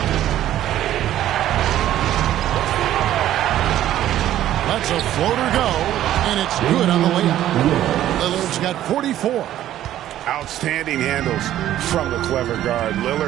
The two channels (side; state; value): left; quieter; 12.6 dB